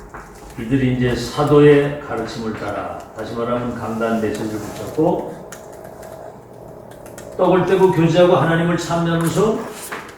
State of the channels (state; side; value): identical; both; correlation 1.00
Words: 이들이 이제 사도의 가르침을 따라, 다시 말하면 강단 메시지를 붙잡고 떡을 떼고 교제하고 하나님을 찬양하면서